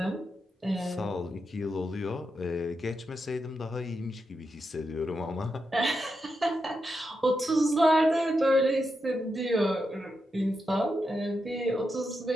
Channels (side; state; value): both; normal; correlation 0.86